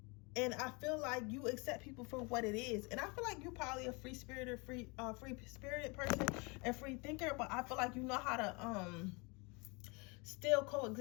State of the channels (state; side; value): quieter; right; 29.0 dB